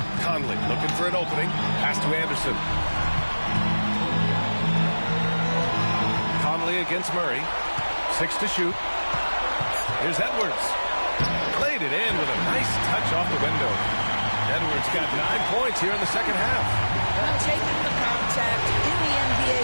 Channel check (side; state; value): both; inverted; correlation -1.00